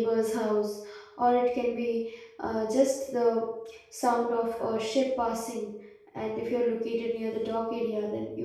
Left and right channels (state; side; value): identical; both; correlation 1.00